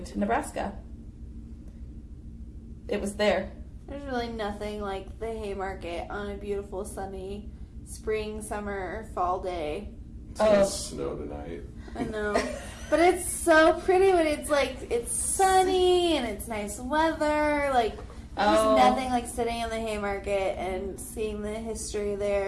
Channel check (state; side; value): identical; both; correlation 1.00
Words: to Nebraska. It was there. There's really nothing like the Haymarket on a beautiful sunny spring, summer, or fall day. It's gonna snow tonight. I know. But it's so pretty when it's sunny and it's nice weather. Like, there's nothing like sitting in the Haymarket and seeing the history